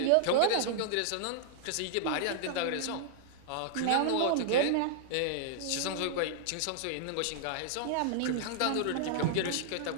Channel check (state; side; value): different; both; correlation -0.01